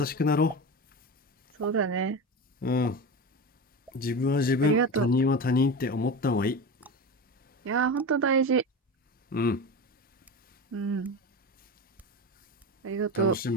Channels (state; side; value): normal; both; correlation 0.24